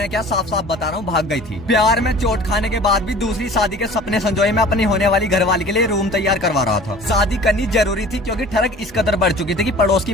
क्या, साफ साफ बता रहा हूँ, भाग गई थी। प्यार में चोट खाने के बाद भी दूसरी शादी के सपने संजोए मैं अपनी होने वाली घरवाली के लिए रूम तैयार करवा रहा था। शादी करनी जरूरी थी क्योंकि ठरक इस कदर बढ़ चुकी थी कि पड़ोस की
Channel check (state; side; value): normal; both; correlation 0.45